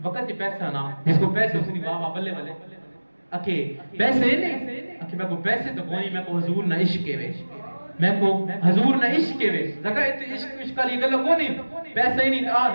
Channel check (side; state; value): both; inverted; correlation -1.00